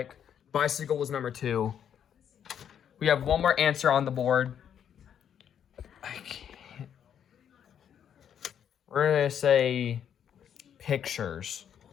Bicycle was number 2. We have 1 more answer on the board. I can't. We're going to say pictures.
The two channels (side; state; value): right; quieter; 8.9 dB